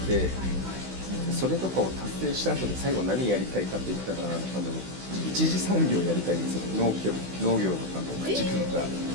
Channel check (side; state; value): left; late; 16 ms